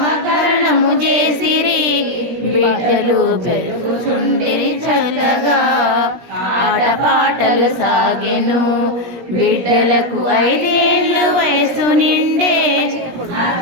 చేసిరి. బిడ్డలు పెరుగుచుండిరి చల్లగా. ఆటపాటలు సాగెను బిడ్డలకు 5 ఏళ్ళ వయసు నిండే.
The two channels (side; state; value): left; late; 17 ms